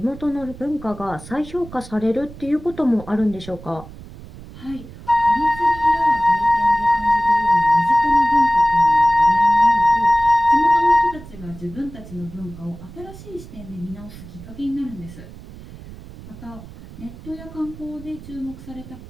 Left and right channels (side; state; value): right; noise; rumble, 16 dB below the sound